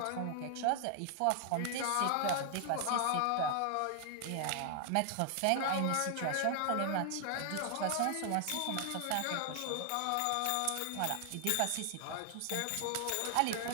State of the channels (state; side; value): different; both; correlation 0.00